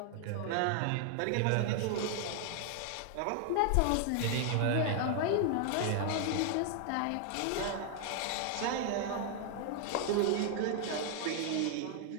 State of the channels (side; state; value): both; different; correlation 0.00